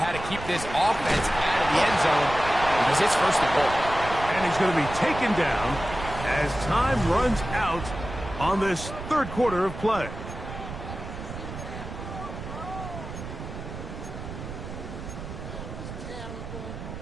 to keep this offense out of the end zone because it's 1st and goal. And he's going to be taken down as time runs out on this 3rd quarter of play.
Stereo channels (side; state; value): right; noise; rumble, 9 dB below the sound